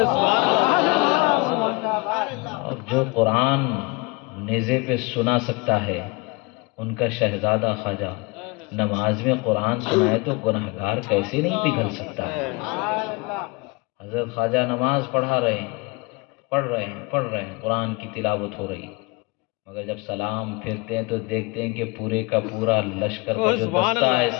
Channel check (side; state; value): right; quieter; 26.9 dB